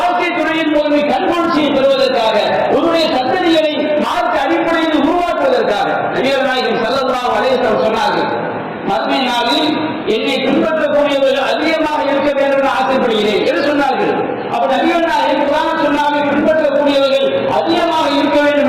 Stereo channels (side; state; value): both; identical; correlation 1.00